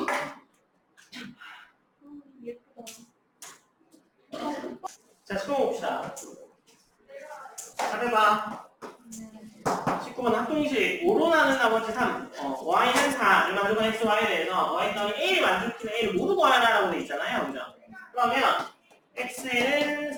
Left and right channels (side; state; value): both; identical; correlation 1.00